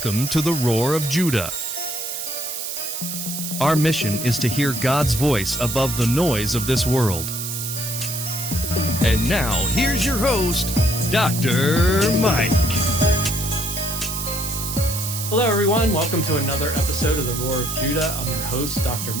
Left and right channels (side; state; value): right; noise; hiss, 5 dB below the sound